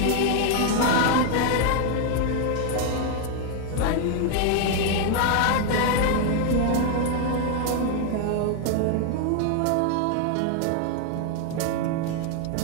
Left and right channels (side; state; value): both; different; correlation 0.00